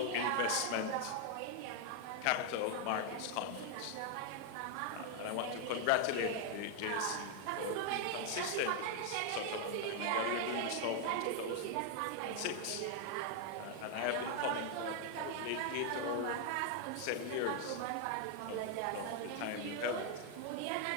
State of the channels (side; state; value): both; different; correlation 0.00